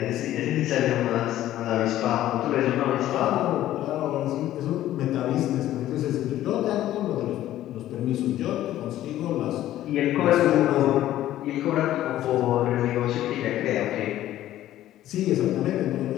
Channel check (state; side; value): quieter; right; 13.5 dB